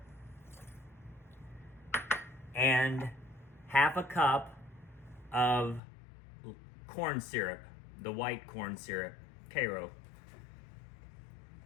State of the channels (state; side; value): drops out; right; at 5.8 s